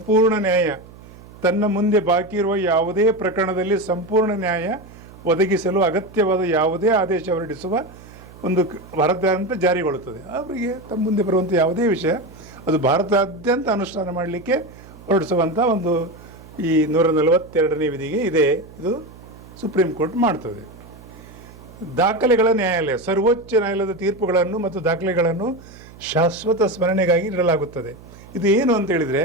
ನ್ಯಾಯ, ತನ್ನ ಮುಂದೆ ಬಾಕಿ ಇರುವ ಯಾವುದೇ ಪ್ರಕರಣದಲ್ಲಿ ಸಂಪೂರ್ಣ ನ್ಯಾಯ ಒದಗಿಸಲು ಅಗತ್ಯವಾದ ಯಾವುದೇ ಆದೇಶ ಹೊರಡಿಸುವ ಒಂದು ಭಾರತಾದ್ಯಂತ ಜಾರಿಗೊಳ್ಳುತ್ತದೆ. ಅವರಿಗೆ ತಮ್ಮ ಮುಂದೆ ಬರುವಂಥ ಯಾವುದೇ ವಿಷಯ ಅದು ಭಾರತಾದ್ಯಂತ ಅನುಷ್ಠಾನ ಮಾಡಲಿಕ್ಕೆ ಹೊರಡಿಸುವಂಥ ಒಂದು ಈ 142ನೇ ವಿಧಿಗೆ ಇದೆ. ಇದು ಸುಪ್ರೀಂ ಕೋರ್ಟ್ ಮಾಡ್ತದೆ. ದಾಖಲೆಗಳ ನ್ಯಾಯಾಲಯ, ಸರ್ವೋಚ್ಚ ನ್ಯಾಯಾಲಯದ ತೀರ್ಪುಗಳನ್ನು ಮತ್ತು ದಾಖಲೆಗಳನ್ನು ಶಾಶ್ವತ ಸ್ಮರಣೆಗಾಗಿ ಇಡಲಾಗುತ್ತದೆ. ಇದು ಏನು ಅಂತ ಹೇಳಿದರೆ,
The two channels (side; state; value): right; noise; hum, 20 dB below the sound